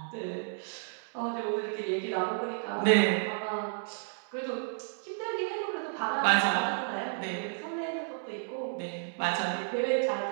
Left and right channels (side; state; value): left; silent; digital silence